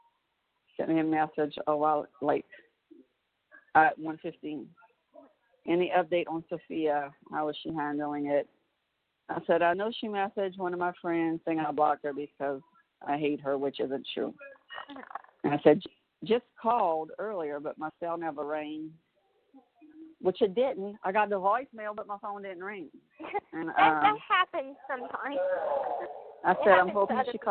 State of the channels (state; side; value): identical; both; correlation 1.00